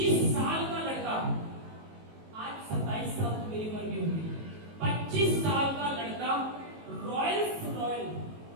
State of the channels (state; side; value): late; left; 19 ms